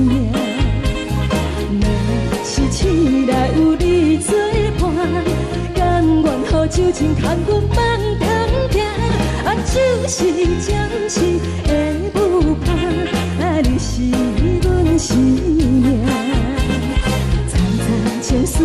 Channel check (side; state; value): both; identical; correlation 1.00